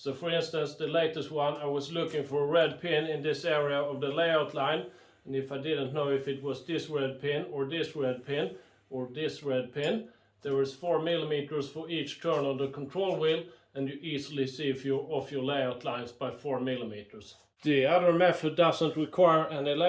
for instance, the latest one, I was looking for a red pin in this area of the layout line, and if I didn't know if it was this red pin or this red pin or this red pin, there is 4 millimeters for each turn on the control wheel, and you easily see if you're off your layout lines by 4 millimeters. The other method doesn't require any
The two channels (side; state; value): both; identical; correlation 1.00